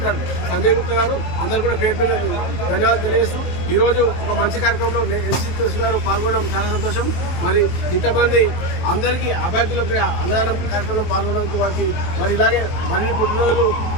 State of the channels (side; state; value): right; late; 23 ms